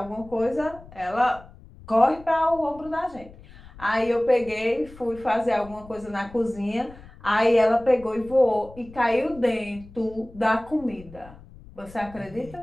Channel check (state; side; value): noise; left; rumble, 20 dB below the sound